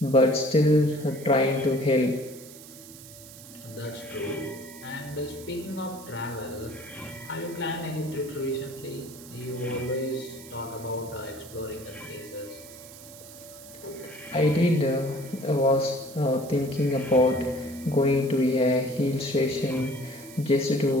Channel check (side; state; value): right; noise; hiss, 17 dB below the sound